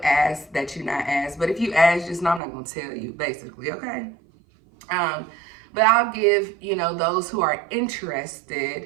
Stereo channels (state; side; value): drops out; left; at 2.4 s